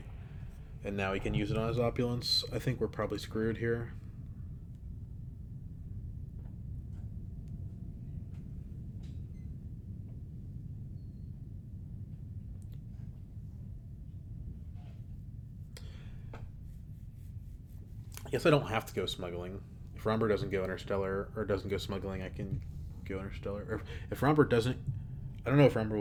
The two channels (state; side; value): identical; both; correlation 1.00